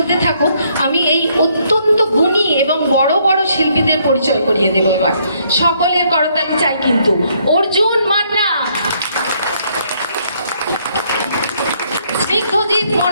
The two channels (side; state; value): both; inverted; correlation -0.69